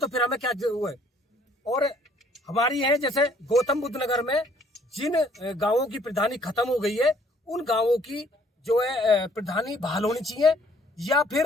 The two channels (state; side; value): normal; both; correlation 0.61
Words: फिर हमें क्या वो है। और हमारी है जैसे गौतम बुद्ध नगर में जिन गांवों की प्रधानी खत्म हो गई है, उन गांवों की जो है प्रधानी बहाल होनी चाहिए, या